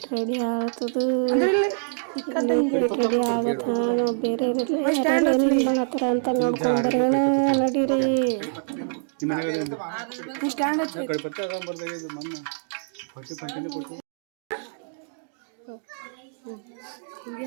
ರೆಡಿ ಆಗ್ತದೆ, ಉಪ್ಪಿಟ್ಟು ರೆಡಿ ಆಗತ್ತ. ನಾವು ಬೇರೆ ಮಾಡತ್ತಾರ ಅಂತ ನೋಡ್ಕೊಂಡ್ಬರೋಣ ನಡೀರಿ.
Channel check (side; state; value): left; silent; digital silence